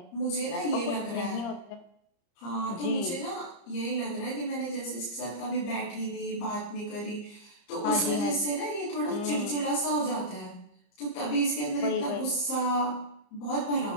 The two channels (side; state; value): right; late; 34 ms